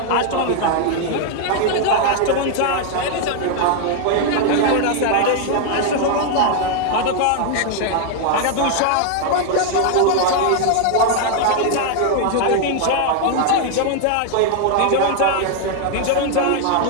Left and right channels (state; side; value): different; both; correlation 0.00